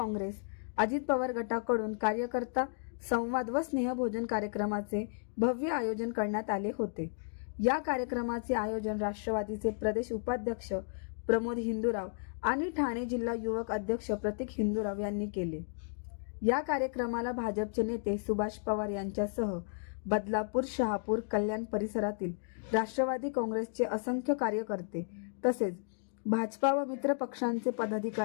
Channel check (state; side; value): silent; right; digital silence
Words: अजित पवार गटाकडून कार्यकर्ता संवाद व स्नेहभोजन कार्यक्रमाचे भव्य आयोजन करण्यात आले होते. या कार्यक्रमाचे आयोजन राष्ट्रवादीचे प्रदेश उपाध्यक्ष प्रमोद हिंदूराव आणि ठाणे जिल्हा युवक अध्यक्ष प्रतीक हिंदूराव यांनी केले. या कार्यक्रमाला भाजपचे नेते सुभाष पवार यांच्यासह बदलापूर, शहापूर, कल्याण परिसरातील राष्ट्रवादी काँग्रेसचे असंख्य कार्यकर्ते तसेच भाजपा व मित्र पक्षांचे